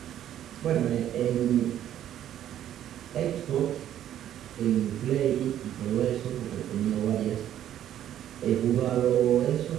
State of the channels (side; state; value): left; quieter; 11.2 dB